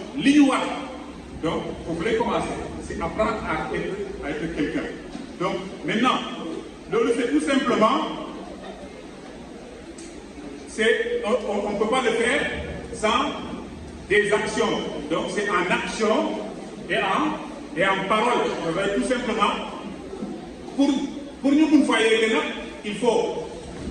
li ñu war. Donc vous voulez commencer, c'est apprendre à être quelqu'un. Donc maintenant loolu c'est tout simplement on ne peut pas le faire sans des actions. Donc c'est en action et en parole. Tout simplement pour ñu mun fa yegg nag il faut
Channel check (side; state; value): both; identical; correlation 1.00